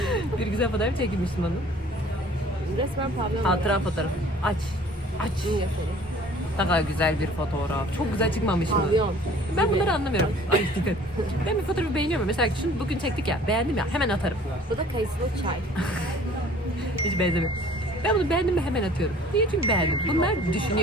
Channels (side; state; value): both; normal; correlation 0.51